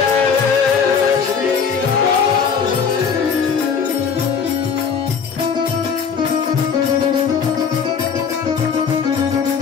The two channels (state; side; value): quieter; right; 6.4 dB